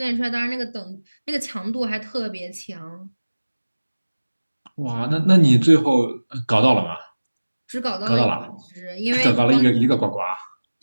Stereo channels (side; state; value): both; inverted; correlation -1.00